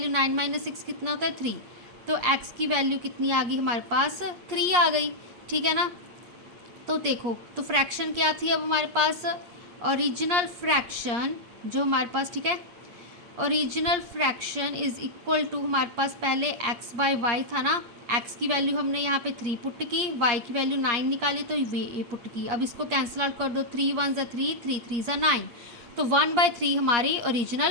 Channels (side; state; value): left; late; 8.5 ms